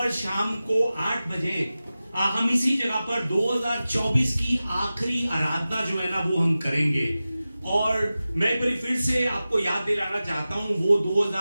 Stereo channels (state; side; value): inverted; both; correlation -0.95